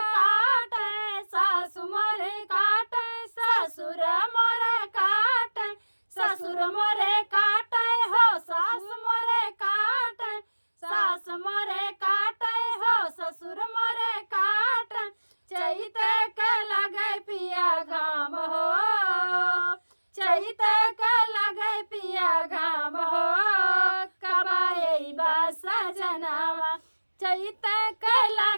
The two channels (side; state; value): both; inverted; correlation -1.00